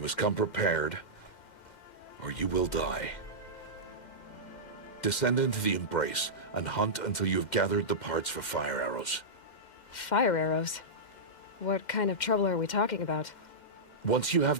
must come prepared, or you will die. Descend into the Embrace and hunt until you have gathered the parts for fire arrows. Fire arrows? What kind of trouble are we talking about? Once you have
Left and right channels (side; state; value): right; late; 2.1 ms